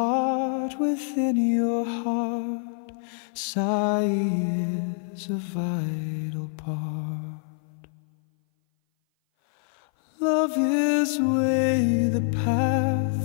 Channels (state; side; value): silent; right; 57 dB below the other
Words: within your heart. Sigh is a vital part. Love is way, the